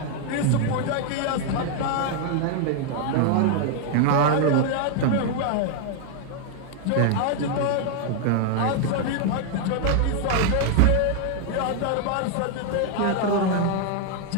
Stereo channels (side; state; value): both; different; correlation 0.00